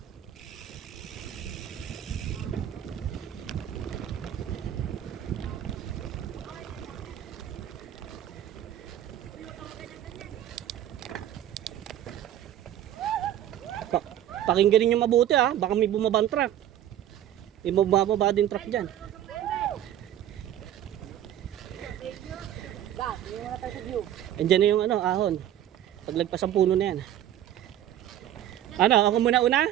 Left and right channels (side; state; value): left; quieter; 11.5 dB